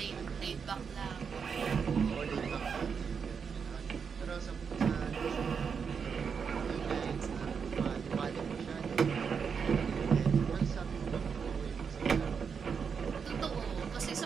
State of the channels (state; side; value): quieter; left; 6.3 dB